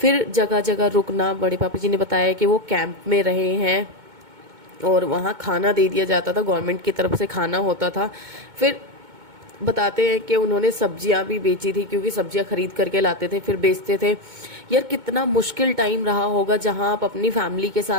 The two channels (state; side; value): late; left; 2.2 ms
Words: जगह जगह रुकना। बड़े पापा जी ने बताया कि वो कैंप में रहे हैं और वहाँ खाना दे दिया जाता था, गवर्नमेंट की तरफ से खाना होता था। फिर बताते हैं कि उन्होंने सब्जियां भी बेची थी, क्योंकि सब्जियां खरीद करके लाते थे फिर बेचते थे। यार कितना मुश्किल टाइम रहा होगा जहां आप अपनी फैमिली के